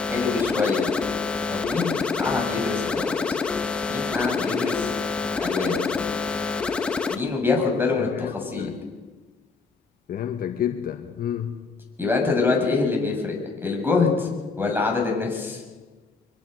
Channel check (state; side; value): quieter; right; 4.2 dB